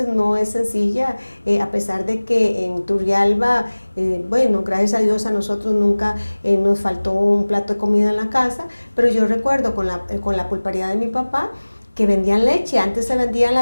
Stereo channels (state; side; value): inverted; both; correlation -1.00